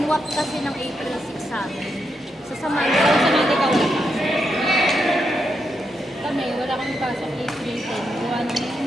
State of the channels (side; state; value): both; normal; correlation 0.83